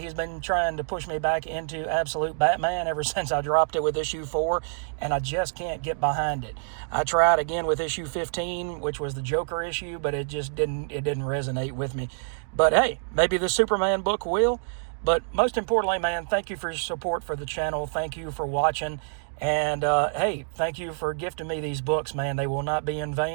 he's been trying to push me back into absolute Batman ever since I dropped it with issue 4, and I just can't get behind it. I tried again with issue 15, which was the Joker issue, but it didn't resonate with me. But hey, maybe the Superman book will. But most importantly, man, thank you for your support for the channel. Thank you for watching. And, hey, thank you for gifting me these books, man. They will not be in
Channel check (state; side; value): silent; left; digital silence